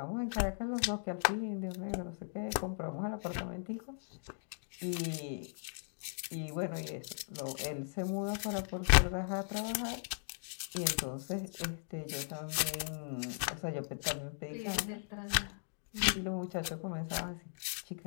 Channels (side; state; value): right; silent; digital silence